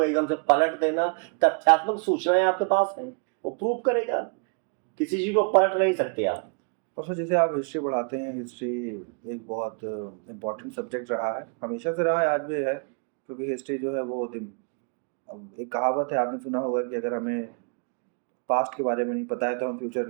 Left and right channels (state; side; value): quieter; left; 39.7 dB